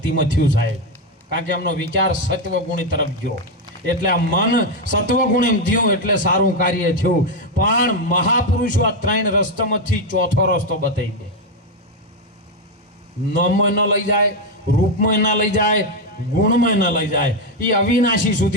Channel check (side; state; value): both; normal; correlation 0.06